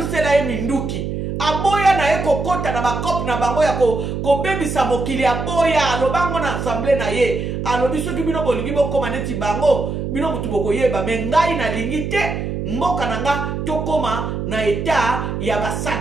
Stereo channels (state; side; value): noise; right; hum, 4 dB below the sound